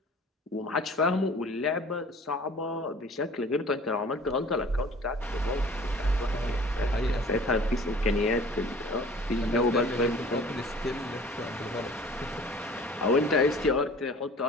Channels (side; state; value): both; normal; correlation 0.47